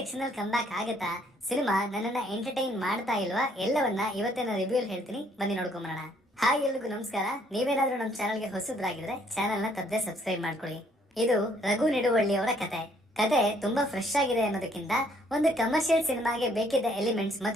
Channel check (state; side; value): normal; both; correlation 0.65